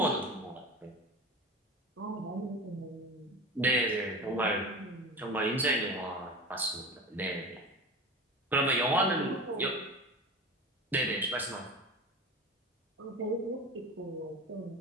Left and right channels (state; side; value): normal; both; correlation 0.31